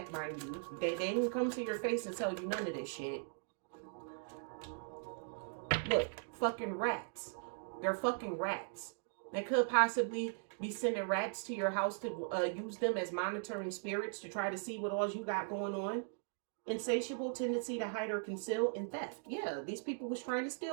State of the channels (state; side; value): silent; left; digital silence